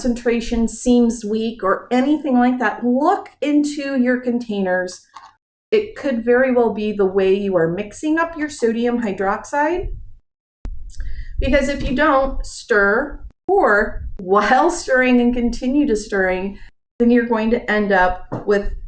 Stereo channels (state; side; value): identical; both; correlation 1.00